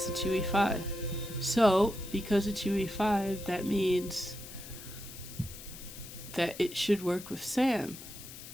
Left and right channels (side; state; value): left; noise; hiss, 14 dB below the sound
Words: it's UE5. So, because it's UE5, that means that it should work with Sam.